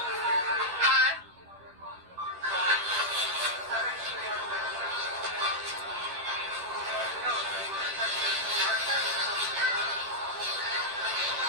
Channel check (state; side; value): late; left; 11 ms